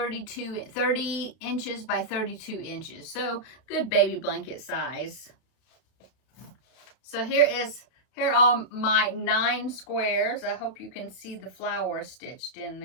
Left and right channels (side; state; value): right; late; 32 ms